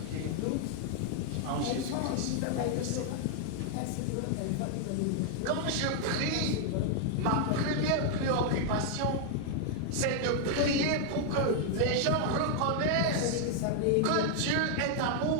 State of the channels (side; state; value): both; different; correlation 0.00